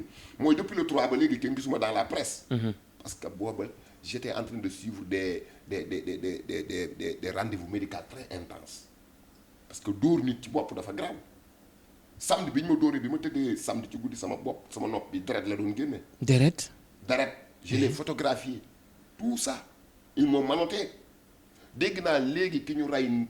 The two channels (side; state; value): both; identical; correlation 1.00